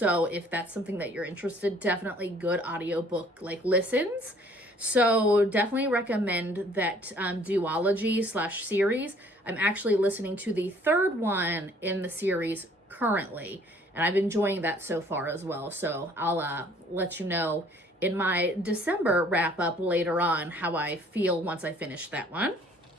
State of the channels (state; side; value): normal; both; correlation 0.57